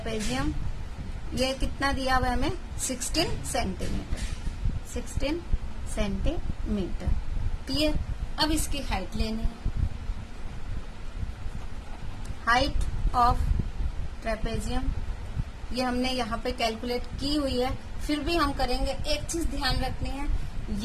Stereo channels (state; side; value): identical; both; correlation 1.00